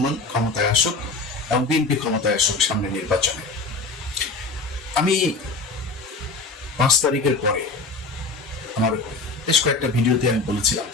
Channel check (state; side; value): quieter; right; 3.6 dB